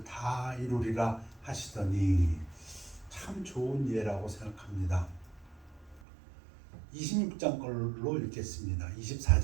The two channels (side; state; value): left; drops out; at 6.0 s